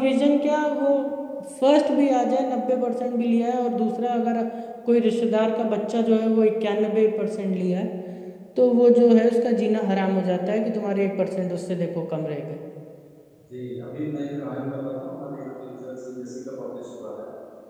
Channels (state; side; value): identical; both; correlation 1.00